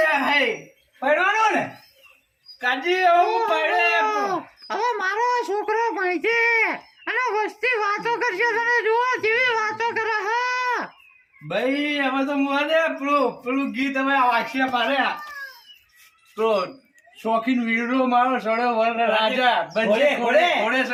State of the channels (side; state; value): both; identical; correlation 1.00